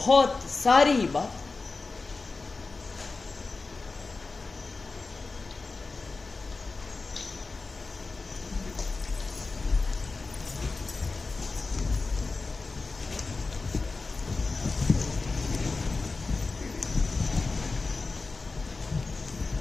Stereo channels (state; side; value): quieter; right; 3.9 dB